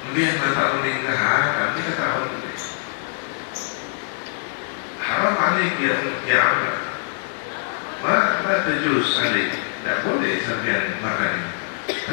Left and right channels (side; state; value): right; silent; digital silence